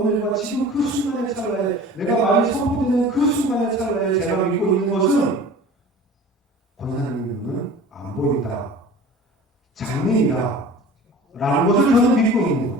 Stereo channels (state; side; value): normal; both; correlation 0.41